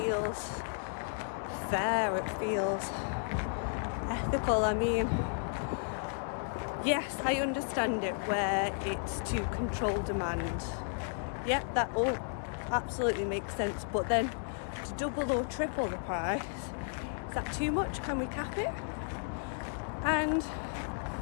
fair, it feels ethical. I mean, yes, I understand it where it's to control demand. Yeah, that all absolutely makes sense, but then to double or triple the price, is that too much? Can we cap it? And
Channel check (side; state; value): right; silent; digital silence